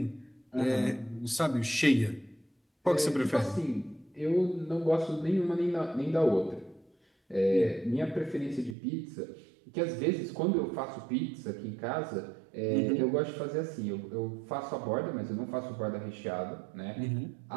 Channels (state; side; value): drops out; left; at 8.8 s